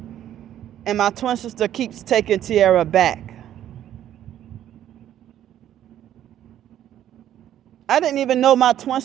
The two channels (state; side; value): quieter; left; 11.4 dB